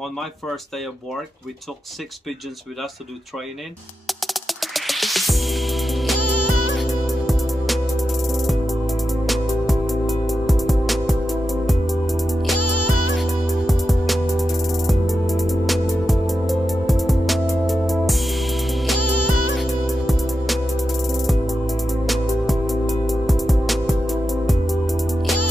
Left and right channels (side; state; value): both; normal; correlation 0.89